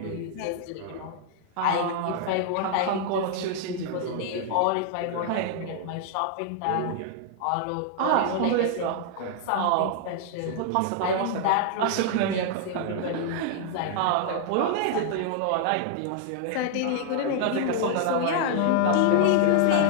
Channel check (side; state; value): both; different; correlation 0.00